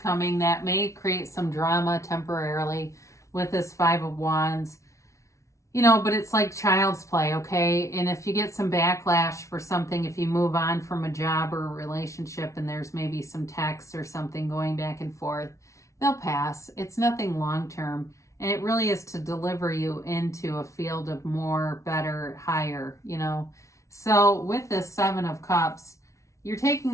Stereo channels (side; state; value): right; late; 0.14 ms